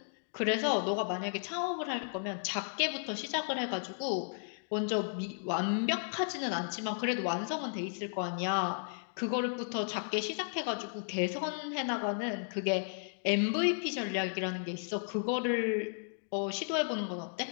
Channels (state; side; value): silent; right; digital silence